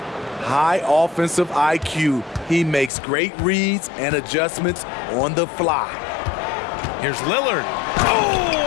offensive IQ. He makes great reads and adjustments on the fly. Here's Lillard.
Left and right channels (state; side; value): drops out; right; at 2.9 s